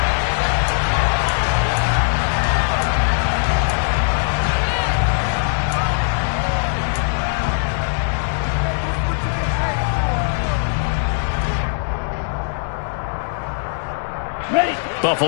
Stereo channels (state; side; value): silent; right; digital silence